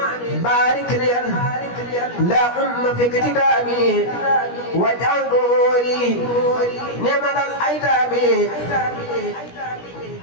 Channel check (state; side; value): late; right; 17 ms